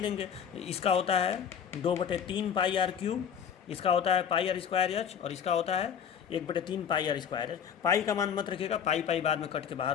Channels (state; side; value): quieter; right; 8.0 dB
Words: इसका होता है 2/3 πr³, इसका होता है πr²h, और इसका होता है 1/3 πr²h। पाई का मान मत रखिएगा, पाई बाद में कट के